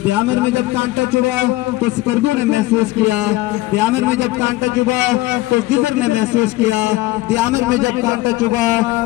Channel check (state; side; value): quieter; right; 18.3 dB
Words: دیامر میں جب کانٹا چبھا تو سکردو نے محسوس کیا، دیامر میں جب کانٹا چبھا تو گزر نے محسوس کیا، دیامر میں جب کانٹا